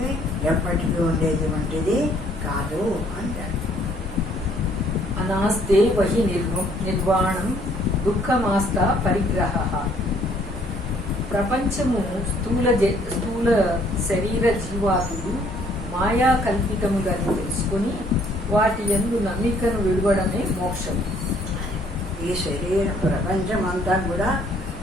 ఎప్పటికీ ఉండేటువంటిది కాదు అంటారు. అనాస్తే వహి నిర్వాణం దుఃఖమాస్త పరిగ్రహ. ప్రపంచము స్థూల శరీర జీవాదులు మాయా కల్పితములని తెలుసుకుని వాటి యందు నమ్మికను విడవడమే మోక్షం. ఈ శరీర ప్రపంచం అంతా కూడా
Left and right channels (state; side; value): normal; both; correlation 0.63